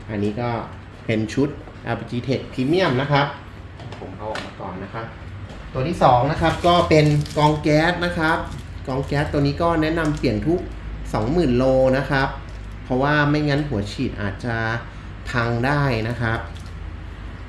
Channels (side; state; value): both; identical; correlation 1.00